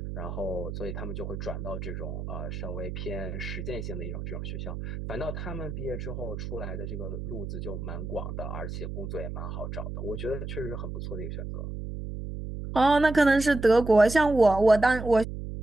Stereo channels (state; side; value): noise; right; hum, 7 dB below the sound